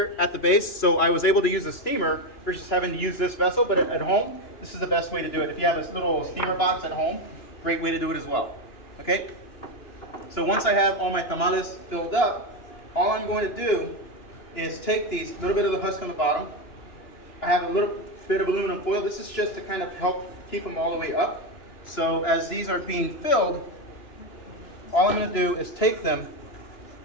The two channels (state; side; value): late; right; 2.9 ms